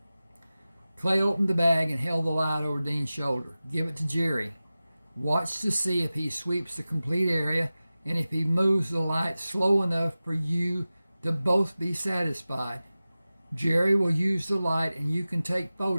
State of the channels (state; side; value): inverted; both; correlation -0.96